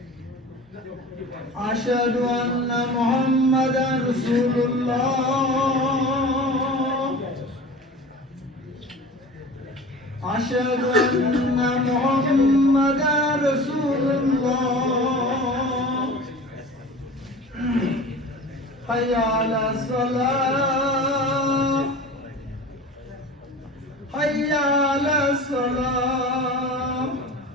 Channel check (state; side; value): normal; both; correlation 0.37